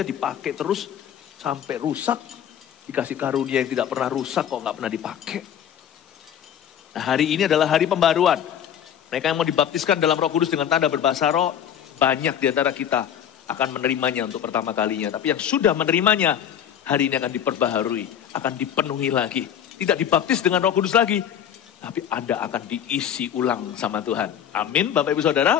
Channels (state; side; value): quieter; right; 9.4 dB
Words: dipakai terus sampai rusak. Dikasih karunia yang tidak pernah rusak kok nggak pernah dipakai. Nah, hari ini adalah hari pembaruan. Mereka yang mau dibaptiskan dalam Roh Kudus dengan tanda berbahasa roh, banyak di antara kita akan menerimanya untuk pertama kalinya. Tapi yang sudah menerimanya, hari ini akan diperbaharui, akan dipenuhi lagi. Tidak dibaptis dengan Roh Kudus lagi, tapi Anda akan diisi ulang sama Tuhan. Amin, Bapak Ibu